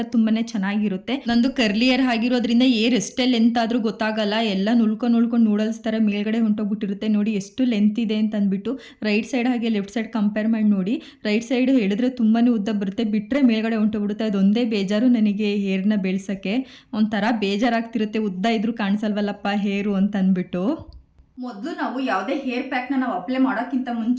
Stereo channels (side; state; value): both; identical; correlation 1.00